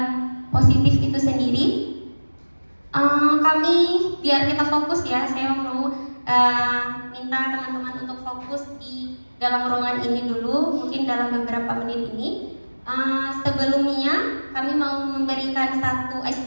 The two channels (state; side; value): inverted; both; correlation -1.00